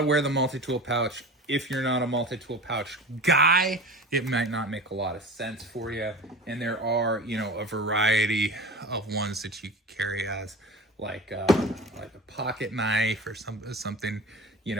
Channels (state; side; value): normal; both; correlation 0.34